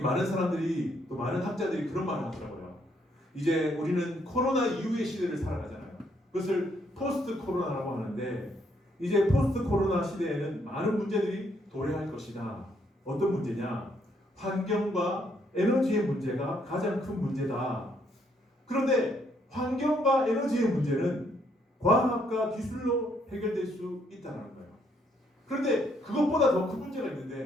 사람들이 또 많은 학자들이 그런 말을 하더라고요. 이제 우리는 코로나 이후의 시대를 살아가잖아요. 그것을 포스트 코로나라고 하는데 이제 포스트 코로나 시대에는 많은 문제들이 도래할 것이다. 어떤 문제냐? 환경과 에너지의 문제가 가장 큰 문제다. 그런데 환경과 에너지의 문제는 과학과 기술로 해결될 수 있다는 거예요. 그런데 그것보다 더 큰 문제가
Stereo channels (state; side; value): normal; both; correlation 0.71